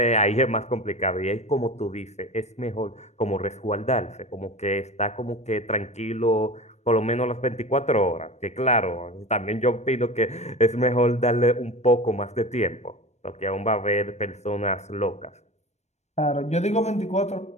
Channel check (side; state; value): right; late; 0.32 ms